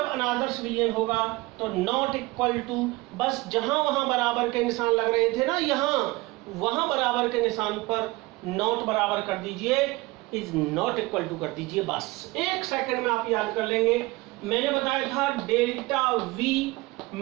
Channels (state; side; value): quieter; left; 21.8 dB